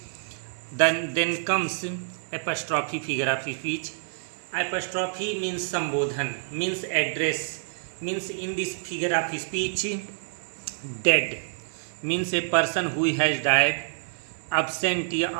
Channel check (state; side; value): silent; left; digital silence